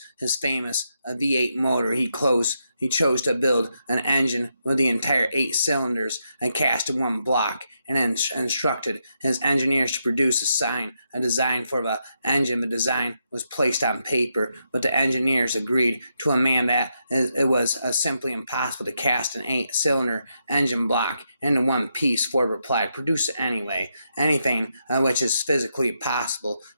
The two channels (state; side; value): inverted; both; correlation -0.82